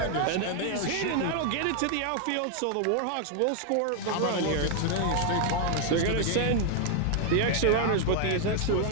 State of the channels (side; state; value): both; different; correlation 0.00